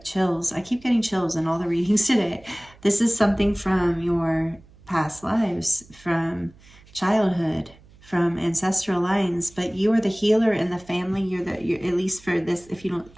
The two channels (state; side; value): noise; right; hum, 25 dB below the sound